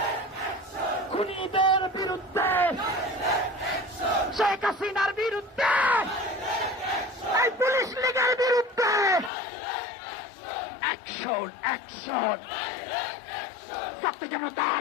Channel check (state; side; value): drops out; right; at 9.3 s